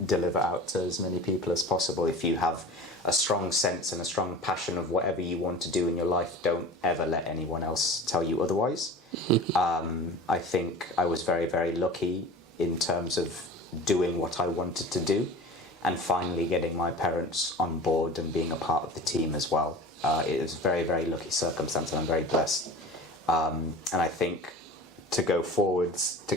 deliver out to as many people as possible. If you have a strong sense and a strong passion of whatever you want to do in your life, don't ever let anyone else tell you otherwise. I think I was very, very lucky in terms of doing what I wanted to do, and finally getting my parents on board and being a part of the team as well. It was a very, very lucky circumstance, and I'm very blessed. And I think to go forwards, to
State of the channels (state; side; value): normal; both; correlation 0.37